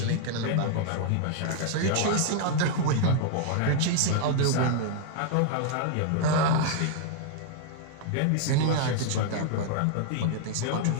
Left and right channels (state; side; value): different; both; correlation 0.00